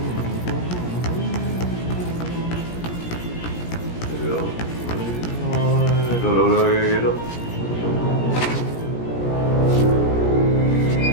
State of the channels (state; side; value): late; right; 17 ms